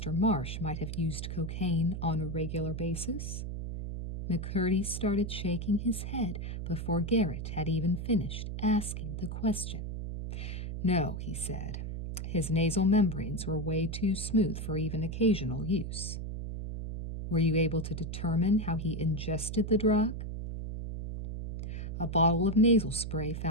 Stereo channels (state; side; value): noise; right; hum, 5 dB below the sound